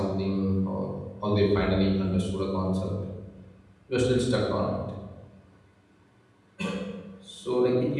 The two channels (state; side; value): identical; both; correlation 1.00